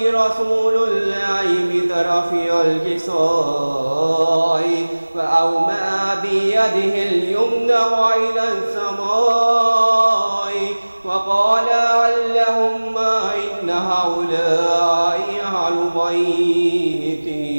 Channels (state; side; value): inverted; both; correlation -1.00